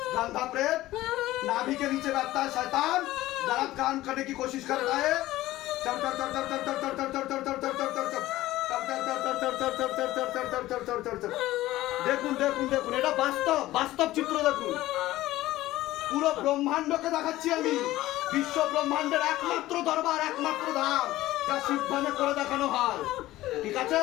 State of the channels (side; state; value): right; quieter; 16.3 dB